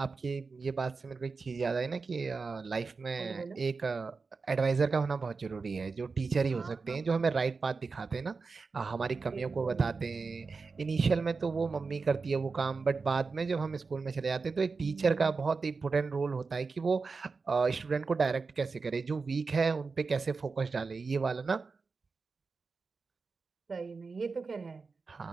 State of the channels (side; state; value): left; quieter; 4.5 dB